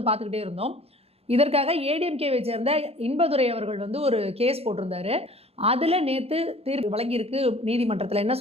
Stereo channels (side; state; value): left; late; 0.29 ms